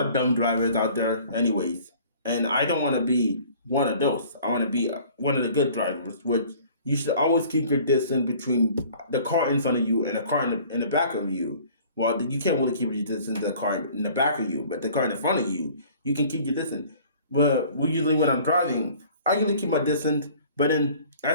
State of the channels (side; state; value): both; inverted; correlation -0.51